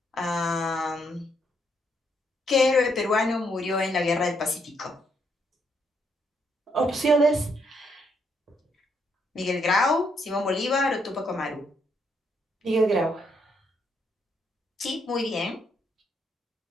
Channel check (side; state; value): both; normal; correlation 0.74